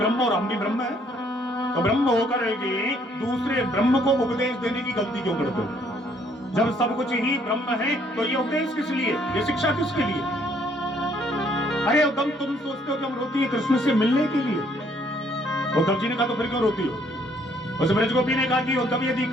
और हम भी ब्रह्म है। तो ब्रह्म होकर के दूसरे ब्रह्म को उपदेश देने की गलती क्यों करते हो। जब सब कुछ ही ब्रह्म है तो ये उपदेश किस लिए, ये शिक्षा किसके लिए। अरे उद्धव, तुम सोचते हो कि हम रोती है कृष्ण से मिलने के लिए। उद्धव जी ने कहा तो फिर क्यों रोती हो। उस ब्रजगोपी ने कहा कि उद्धव, यदि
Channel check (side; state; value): both; normal; correlation 0.66